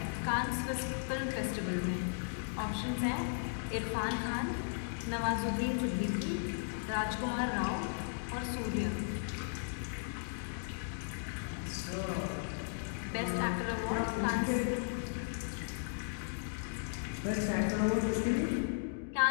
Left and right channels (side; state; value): right; silent; digital silence